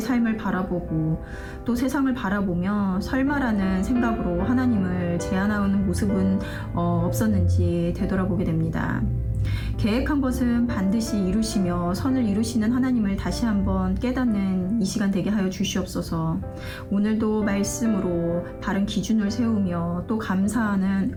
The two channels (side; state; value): both; identical; correlation 1.00